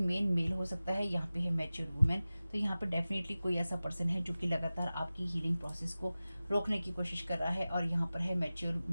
हो सकता है, यहाँ पे है मैच्योर वुमेन। तो यहाँ पे डेफिनेटली कोई ऐसा पर्सन है जो कि लगातार आपकी हीलिंग प्रोसेस को रोकने की कोशिश कर रहा है, और यहाँ पर है मैच्योर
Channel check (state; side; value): inverted; both; correlation -0.97